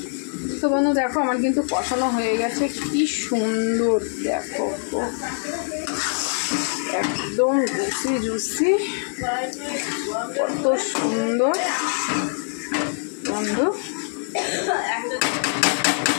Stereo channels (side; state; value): right; silent; digital silence